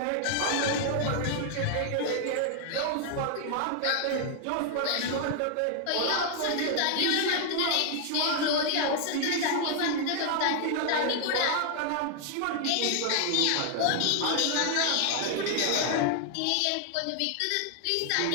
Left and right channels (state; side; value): different; both; correlation 0.00